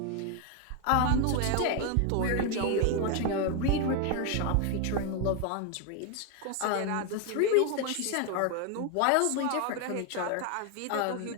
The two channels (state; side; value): different; both; correlation 0.01